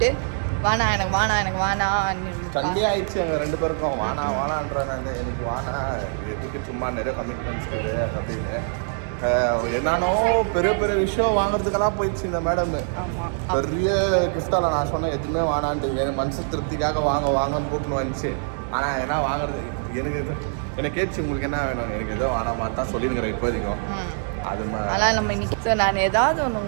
வானா எனக்கு வானா சண்டே ஆயிடுச்சு எங்கள் 2 பேருக்கும். வானான்றாங்க, எனக்கு வானா எதுக்கு சும்மா நிறைய கமிட்மெண்ட்ஸ் இருக்குது அப்படின்னு. என்னன்னோ பெரிய பெரிய விஷயம் வாங்குறதுக்கெல்லாம் போயிடுச்சு இந்த மேடம். பெரிய கிஃப்டால நான் சொன்னேன் எதுவுமே வானான்ட்டு, என் மனசு திருப்திக்காக வாங்கன்னு கூப்பிட்டு வந்துச்சு. ஆனால் என்ன வாங்குறது எனக்கு கேட்டுச்சு, உங்களுக்கு என்ன வேணும், எனக்கு ஏதோ வானாமா தான் சொல்லிருக்கிறேன் இப்போதைக்கும். அதெல்லாம் நம்ம இன்னைக்கு நான் ஏதாவது ஒன்று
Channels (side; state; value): left; silent; digital silence